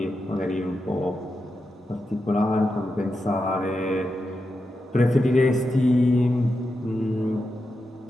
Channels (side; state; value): both; normal; correlation 0.88